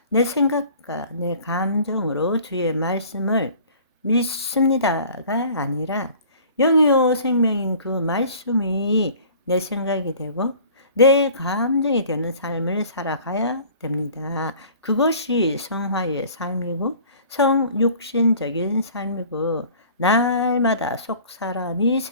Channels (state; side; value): inverted; both; correlation -0.48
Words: 내 생각과 내 감정으로 주의 말씀을 믿습니다가 아니라 영이요 생명인 그 말씀이 내 생각이 되고 내 감정이 되는 삶을 살아가야 됩니다. 그것이 성화의 삶이고 성육신적인 삶이고 날마다 속 사람이